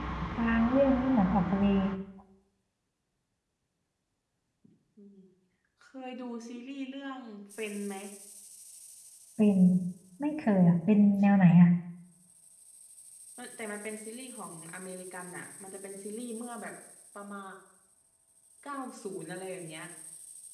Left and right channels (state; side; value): identical; both; correlation 1.00